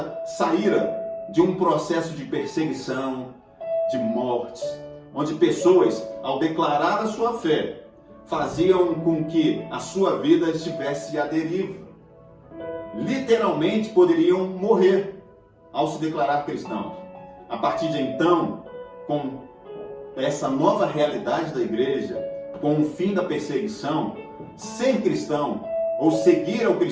saíra de um processo de perseguição, de mortes, onde pessoas, ao declarar a sua fé, faziam com que a sua vida estivesse à deriva. Literalmente poderiam morrer ao se declarar cristãos. A partir de então, com essa nova realidade da igreja, com o fim da perseguição, ser cristão ou seguir ao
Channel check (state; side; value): identical; both; correlation 1.00